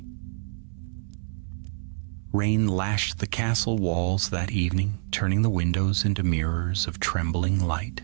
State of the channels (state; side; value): silent; left; 60 dB below the other